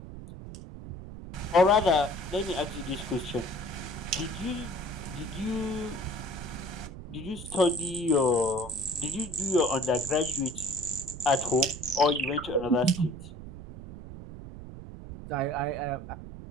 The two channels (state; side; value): noise; right; rumble, 12 dB below the sound